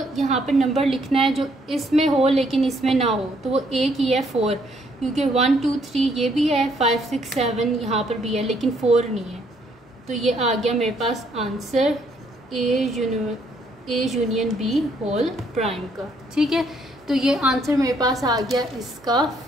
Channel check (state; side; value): normal; both; correlation 0.69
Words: यहाँ पर नंबर लिखना है जो इसमें हो लेकिन इसमें ना हो। तो वो एक ही है 4, क्योंकि 1 2 3 ये भी है, 5 6 7 यहाँ पर भी है लेकिन 4 नहीं है। तो ये आ गया मेरे पास answer A union B whole prime का। ठीक है, तो ये आंसर मेरे पास आ गया इसका